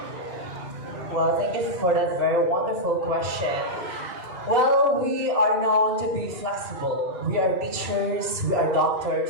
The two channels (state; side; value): late; left; 2.7 ms